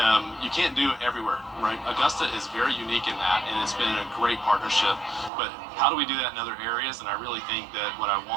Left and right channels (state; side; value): drops out; left; at 5.3 s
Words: you can't do it everywhere, right? Augusta is very unique in that, and it's been a great partnership. But how do we do that in other areas? And I really think that what I